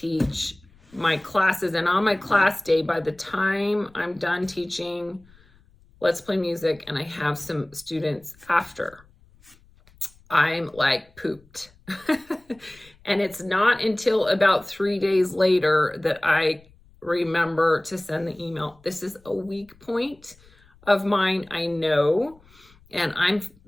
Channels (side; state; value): left; noise; rumble, 28 dB below the sound